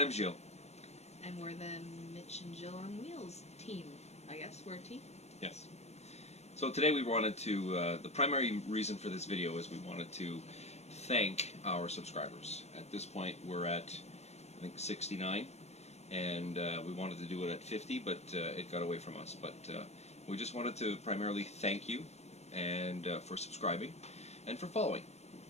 I'm Jill. And we're the Mitch and Jill on Wheels team. I guess we're a team? Yes. So today we wanted to, the primary reason for this video is we wanted to thank our subscribers. At this point we're at, I think, 69. And we wanted to do it at 50, but it got away from us. But we just wanted to primarily thank you and for subscribing and for following.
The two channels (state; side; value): late; right; 0.31 ms